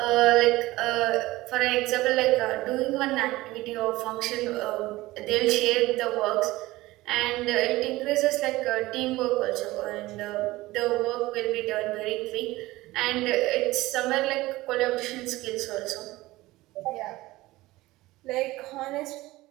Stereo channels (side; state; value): left; quieter; 18.6 dB